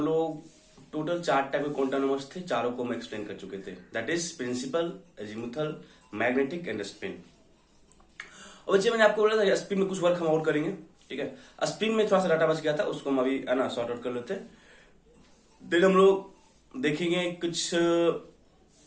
लोग टोटल 4 टाइप के क्वांटम नंबर्स थे, चारों को हम एक्सप्लेन कर चुके थे। That is principal, azimuthal, magnetic and spin. और बच्चे मैंने आपको बोला था स्पिन में कुछ वर्क हम और करेंगे, ठीक है। स्पिन में थोड़ा सा डाटा बच गया था, उसको हम अभी है ना सॉर्ट आउट कर लेते हैं। देन हम लोग देखेंगे कुछ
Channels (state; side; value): identical; both; correlation 1.00